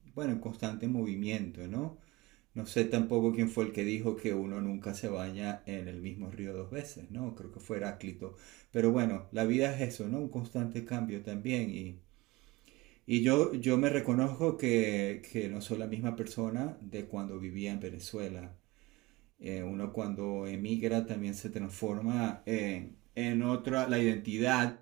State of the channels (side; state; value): left; quieter; 21.3 dB